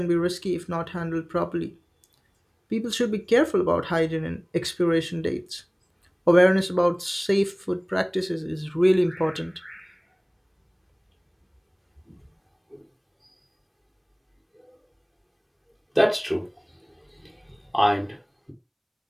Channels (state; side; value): identical; both; correlation 1.00